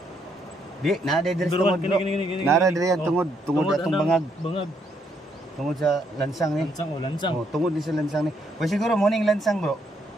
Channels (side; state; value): both; normal; correlation 0.73